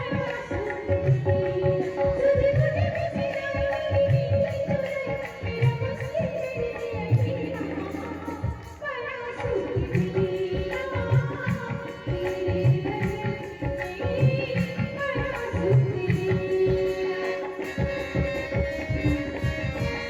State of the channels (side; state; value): both; identical; correlation 1.00